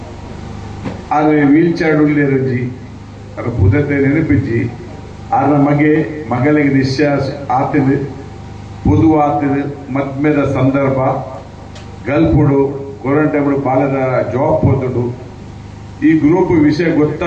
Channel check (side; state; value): both; identical; correlation 1.00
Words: ಆದ್ರೆ ವೀಲ್ ಚೇರ್ ಉಳ್ಳೇರಜ್ಜಿ ಅದ್ರ ಪುದತೆ ನೆನಪಿಜ್ಜಿ ಆದ್ರ ಮಗಳಿಗೆ ನಿಶ್ವಾಸ ಆತದು ಪೊದು ಆತದು ಮದ್ಮೆದ ಸಂದರ್ಭ ಗಲ್ಪುಡು ಕ್ವಾರಂಟೈನ್ ಬಾಲದ ಜಾಬ್ ಹೋದಡು ಈ ಗ್ರೂಪ್ ವಿಷಯ